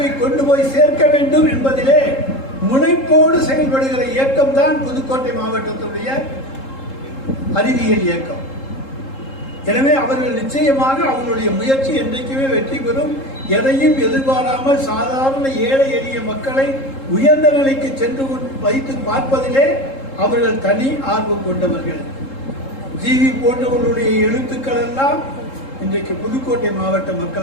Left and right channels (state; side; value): late; right; 3.7 ms